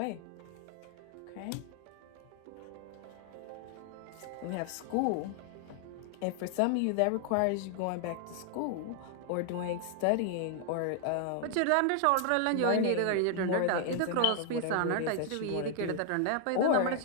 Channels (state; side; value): different; both; correlation 0.00